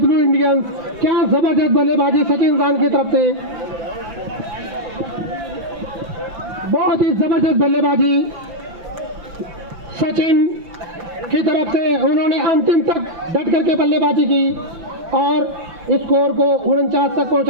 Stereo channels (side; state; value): left; late; 6.0 ms